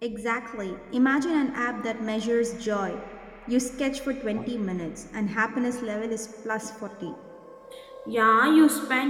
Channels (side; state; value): both; identical; correlation 1.00